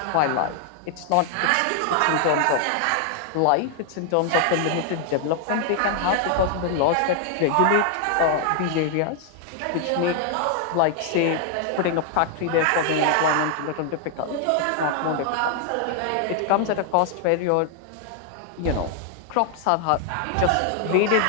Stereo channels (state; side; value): different; both; correlation 0.00